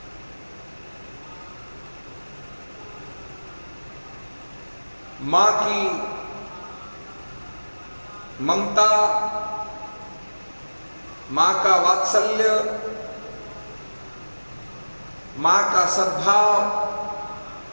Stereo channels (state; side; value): inverted; both; correlation -1.00